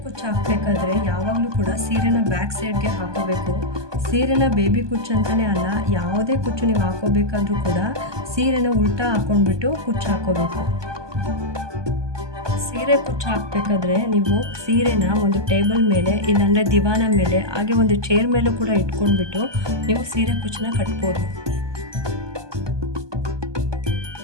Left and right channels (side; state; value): left; late; 1.2 ms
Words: ಕುಚ್ಚು ಹಾಕಬೇಕಾದ್ರೆ ಯಾವಾಗಲೂ ಕೂಡ ಸೀರೆನ ಬ್ಯಾಕ್ ಸೈಡ್ಗೆ ಹಾಕೋಬೇಕು. ಸೀರೆನ ಬೇಬಿ ಕುಚ್ಚು ಅಂತಲೇ ಅಲ್ಲ, ಯಾವುದೇ ಕುಚ್ಚು ನೀವು ಹಾಕೋಬೇಕಾದ್ರೂ ಕೂಡ ಸೀರೆನ ಉಲ್ಟಾ ಹಾಕೊಂಡ್ಬಿಟ್ಟು ಕುಚ್ಚು ಹಾಕೋಬೇಕು. ಸೀರೆ ಕುಚ್ಚು ಹಾಕಬೇಕಾದ್ರೆ ನೀವು ಸೀರೆನ ಒಂದು ಟೇಬಲ್ ಮೇಲೆ ಇಲ್ಲಾಂದರೆ ದಿವಾನ ಮೇಲೆ ಹಾಗೆ ಒಂದು ಚೇರ್ ಮೇಲೂ ಕೂಡ ಇಟ್ಕೊಂಡ್ಬಿಟ್ಟು ನೀವು ಸೀರೆ ಕುಚ್ಚನ್ನ ಕಟ್ಬೋದು.